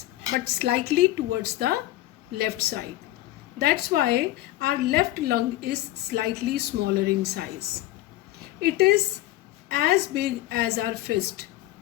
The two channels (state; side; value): quieter; right; 15.7 dB